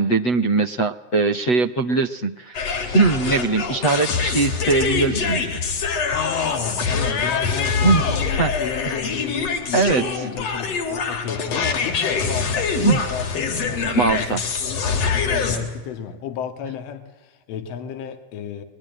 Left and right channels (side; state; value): right; late; 8.1 ms